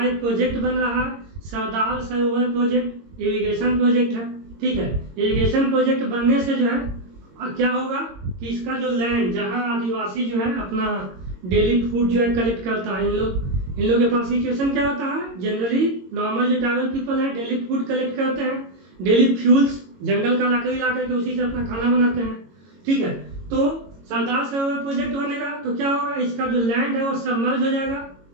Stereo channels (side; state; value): left; late; 22 ms